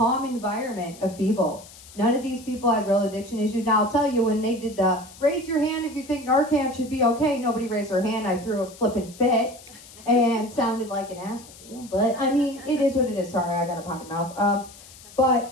environment of people. None of these people had real addiction issues. Now, I'll tell you, when they did the raise your hand if you think Narcan should be okay, nobody raised their hand. I threw a flippin' fit and sounded like an asshole. But, I mean, it is what it is. Sorry, I got a potty mouth. But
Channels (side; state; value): left; noise; hiss, 20 dB below the sound